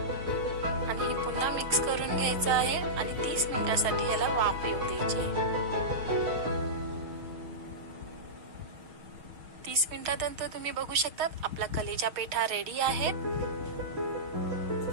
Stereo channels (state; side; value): late; left; 6.3 ms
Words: आणि हे पुन्हा मिक्स करून घ्यायचं आहे, आणि 30 मिनिटांसाठी याला वाफ येऊ द्यायची आहे। 30 मिनिटांनंतर तुम्ही बघू शकता आपला कलेचा पेठा रेडी आहे।